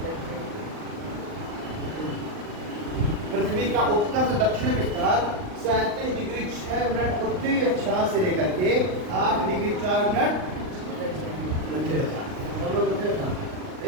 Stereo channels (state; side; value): late; left; 39 ms